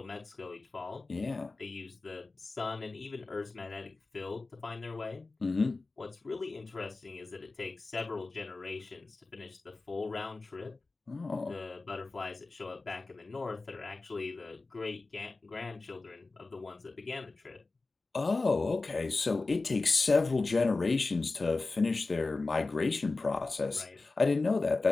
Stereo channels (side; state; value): right; quieter; 3.6 dB